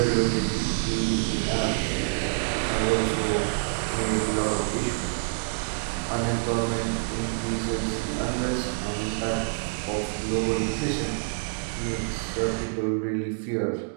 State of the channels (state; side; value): silent; left; 60 dB below the other